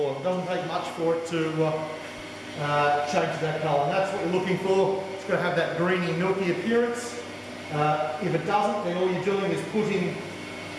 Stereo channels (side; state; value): both; identical; correlation 1.00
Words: It doesn't take much for it to change that colour, and that's what you're looking for. It's got to have that greeny, milky appearance. If it doesn't, then all you're doing is putting